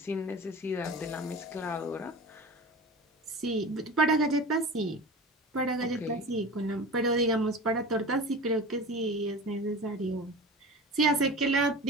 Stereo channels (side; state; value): both; normal; correlation 0.33